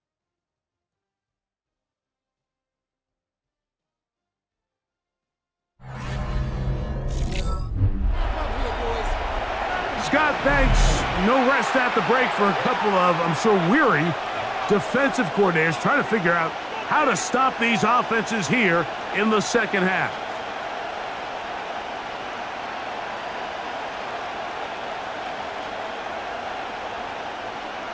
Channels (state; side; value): identical; both; correlation 1.00